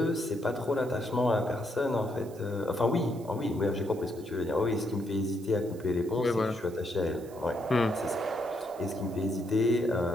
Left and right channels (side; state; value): right; noise; hiss, 23 dB below the sound